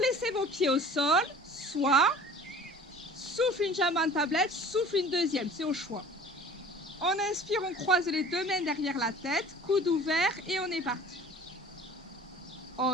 vos pieds au sol, soit souffle une jambe en tablette, souffle une deuxième, c'est au choix. On inspire, on croise les 2 mains derrière la tête, coude ouvert et on est parti.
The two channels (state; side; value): normal; both; correlation 0.45